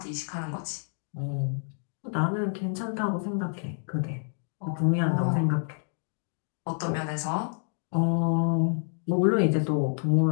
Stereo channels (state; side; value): silent; right; digital silence